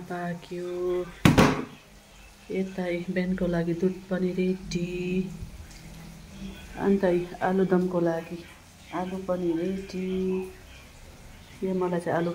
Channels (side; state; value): both; identical; correlation 1.00